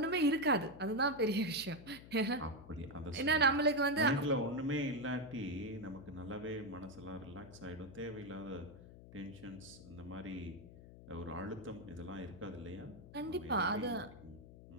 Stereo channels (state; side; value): noise; left; hum, 17 dB below the sound